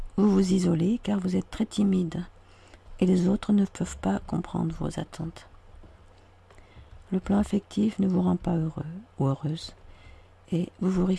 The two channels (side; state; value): both; identical; correlation 1.00